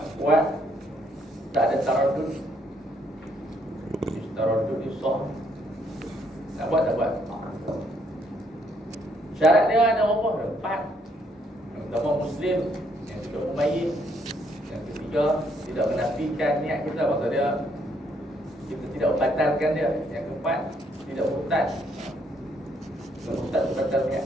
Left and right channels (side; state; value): both; normal; correlation 0.71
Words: kuat, tak ada taraddud. Taraddud ni sah. Nak buat tak buat. Syarat dia ada berapa? 4. Yang pertama Muslim, yang kedua mumayyiz, yang ketiga tidak menafikan niat kita, maksud dia kita tidak membatalkan dia. Yang keempat tidak murtad. Kalau murtad itu batal niat.